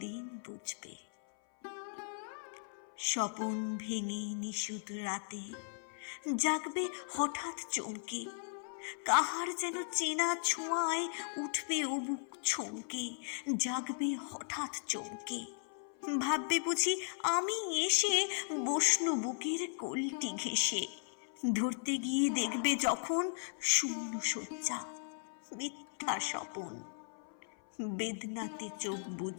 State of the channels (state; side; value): silent; right; 53 dB below the other